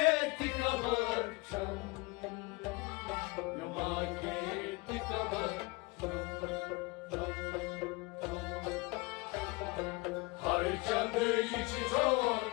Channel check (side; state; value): right; quieter; 25.6 dB